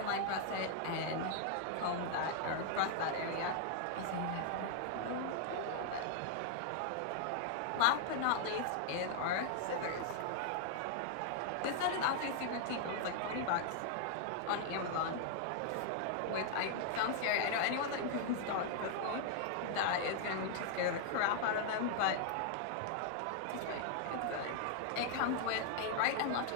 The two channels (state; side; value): different; both; correlation -0.01